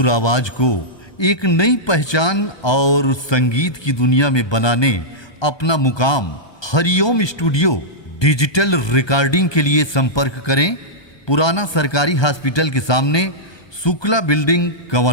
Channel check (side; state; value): right; late; 1.2 ms